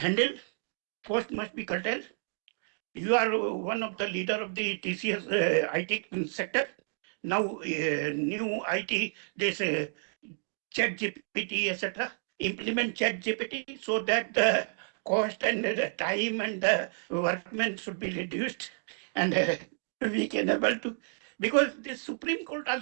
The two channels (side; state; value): left; silent; digital silence